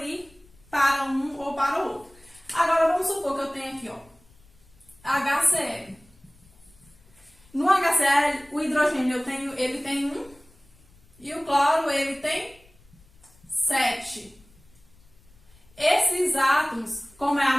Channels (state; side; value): noise; left; rumble, 28 dB below the sound